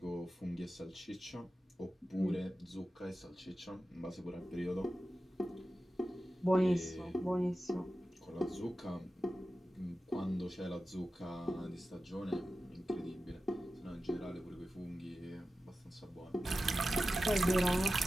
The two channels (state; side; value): normal; both; correlation 0.93